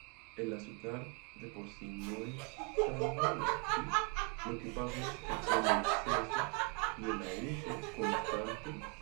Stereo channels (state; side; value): quieter; left; 32.6 dB